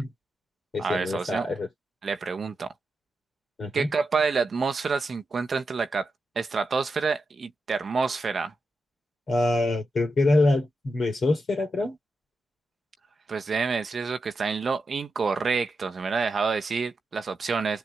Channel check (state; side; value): normal; both; correlation 0.87